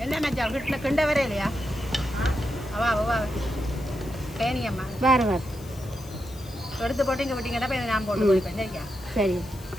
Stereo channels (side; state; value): left; noise; hiss, 21 dB below the sound